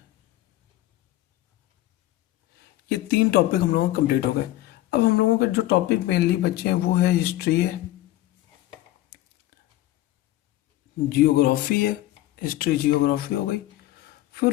ये 3 टॉपिक हम लोगों के कंप्लीट हो गए। अब हम लोगों के जो टॉपिक मेनली बचे हैं वो है हिस्ट्री है, जियोग्राफी है। हिस्ट्री जियोग्राफी हो गई।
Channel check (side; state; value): right; quieter; 15.6 dB